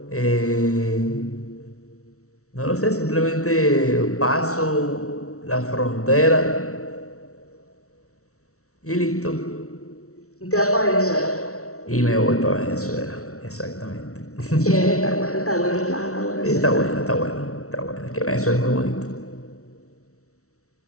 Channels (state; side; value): late; right; 0.64 ms